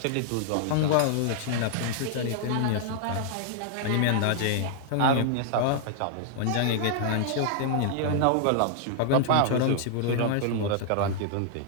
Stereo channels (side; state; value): both; different; correlation -0.01